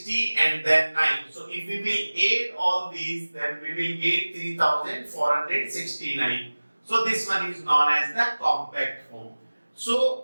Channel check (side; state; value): both; inverted; correlation -1.00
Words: and then 9. So if we will add all these, then we will get 3469. So this one is known as the compact form.